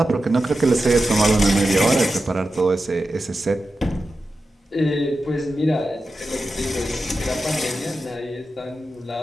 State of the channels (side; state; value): both; normal; correlation 0.91